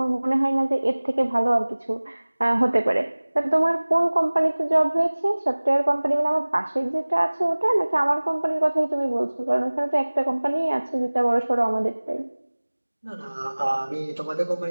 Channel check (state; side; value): inverted; both; correlation -1.00